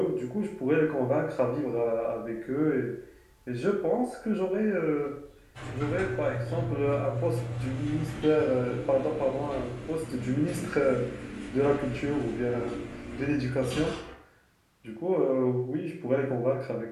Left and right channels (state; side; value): identical; both; correlation 1.00